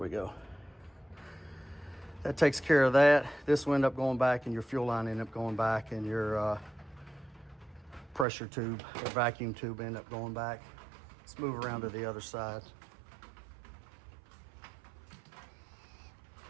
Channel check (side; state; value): left; drops out; at 8.2 s